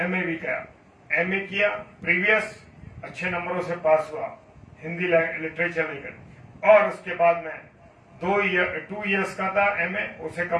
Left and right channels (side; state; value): both; identical; correlation 1.00